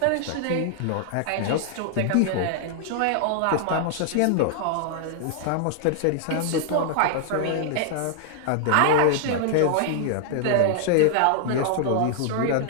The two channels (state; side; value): different; both; correlation 0.00